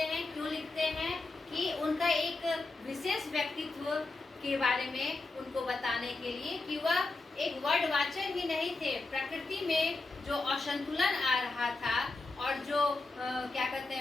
क्यों लिखते हैं कि उनका एक विशेष व्यक्तित्व के बारे में उनको बताने के लिए कि वह एक वर्ड वाचर ही नहीं थे। प्रकृति में जो असंतुलन आ रहा था और जो क्या कहते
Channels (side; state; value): right; quieter; 3.5 dB